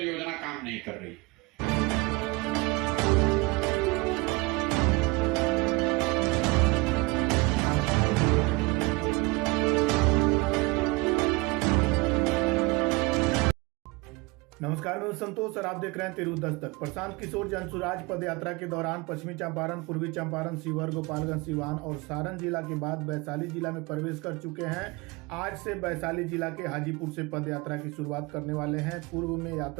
योजना काम नहीं कर रही। नमस्कार, मैं संतोष और आप देख रहे हैं तिरहुत दस्तक। प्रशांत किशोर जनसुराज पद यात्रा के दौरान पश्चिमी चंपारण, पूर्वी चंपारण, शिवहर, गोपालगंज, सिवान और सारण जिला के बाद वैशाली जिला में प्रवेश कर चुके हैं। आज से वैशाली जिला के हाजीपुर से पद यात्रा की शुरुआत करने वाले हैं। पूर्व में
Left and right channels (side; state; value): left; quieter; 25.3 dB